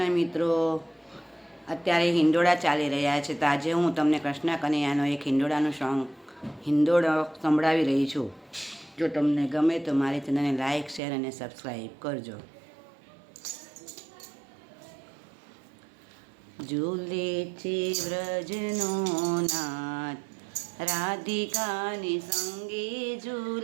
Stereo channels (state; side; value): drops out; left; at 11.0 s